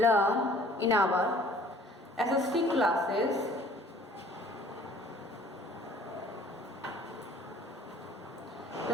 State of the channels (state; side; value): normal; both; correlation 0.53